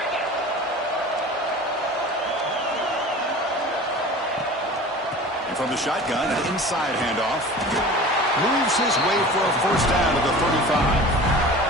And from the shotgun, an inside handoff. Moves his way for a first down to the 35.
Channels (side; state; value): both; normal; correlation 0.39